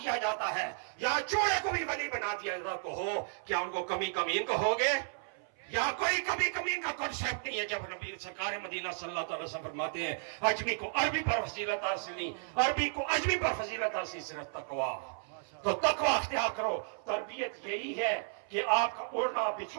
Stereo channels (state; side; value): silent; left; 55 dB below the other